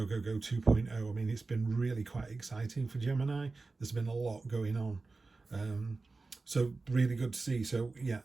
go, go 2.0. I mean, it's been really quite exciting for Gemini. There's been a lot going on. So really good to see. So yeah,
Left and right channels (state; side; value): quieter; left; 3.7 dB